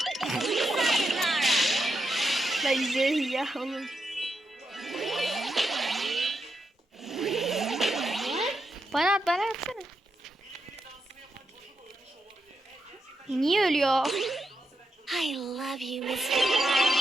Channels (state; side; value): normal; both; correlation 0.85